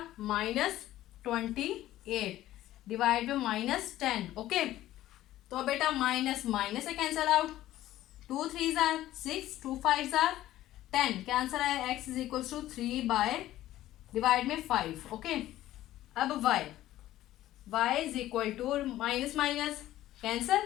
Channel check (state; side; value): quieter; right; 14.4 dB